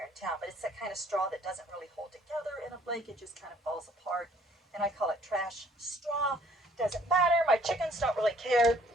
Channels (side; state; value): both; normal; correlation 0.60